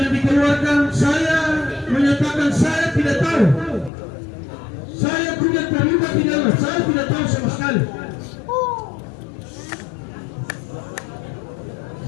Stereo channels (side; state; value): right; drops out; at 3.9 s